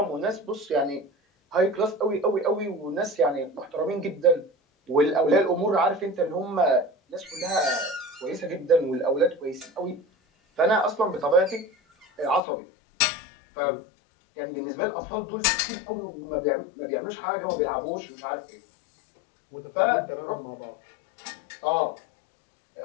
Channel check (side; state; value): right; drops out; at 12.4 s